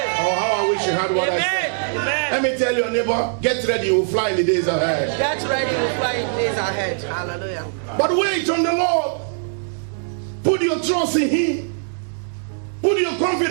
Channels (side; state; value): left; silent; 64 dB below the other